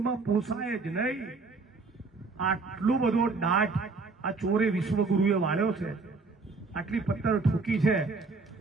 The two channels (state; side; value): quieter; left; 4.1 dB